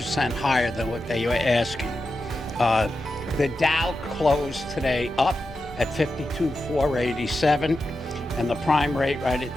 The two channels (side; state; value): both; normal; correlation 0.90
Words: higher than what they were asking. The Dow closed today up at 52,487, and the prime rate right